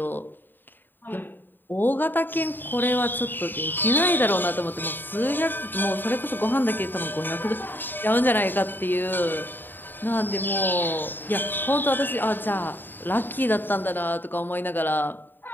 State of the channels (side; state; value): right; late; 0.093 ms